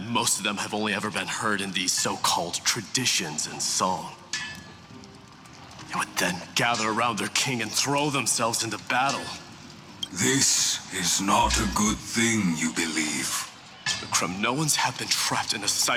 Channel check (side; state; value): both; identical; correlation 1.00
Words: most of them have only ever been heard in these so-called traditions in song. They would then gather around their king and throw themselves into battle. This is not a good thing, you believe. The Kremnoans have been trapped in a